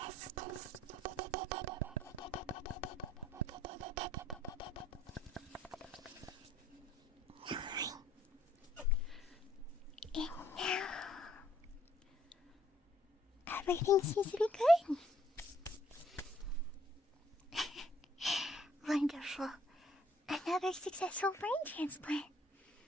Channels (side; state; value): both; normal; correlation 0.64